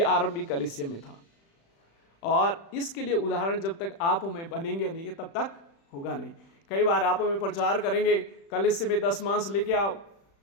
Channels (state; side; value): late; right; 36 ms